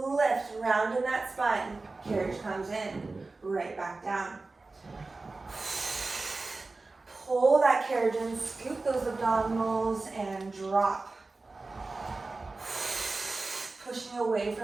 lift. Round in that spine. Carriage comes in. Right back down. Pull that carriage in, scoop those abdominals, and drop. Pushing away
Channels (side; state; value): left; quieter; 3.5 dB